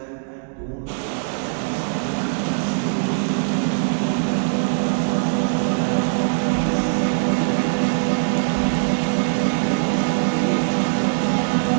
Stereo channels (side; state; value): left; silent; digital silence